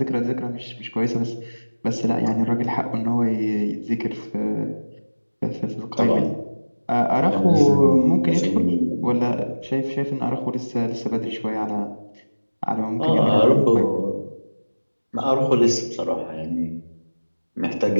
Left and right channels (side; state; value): both; inverted; correlation -1.00